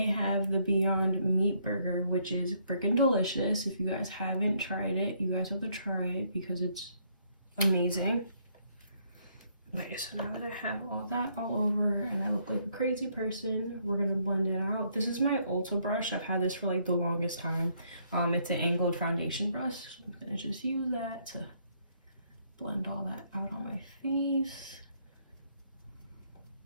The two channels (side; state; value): both; inverted; correlation -0.70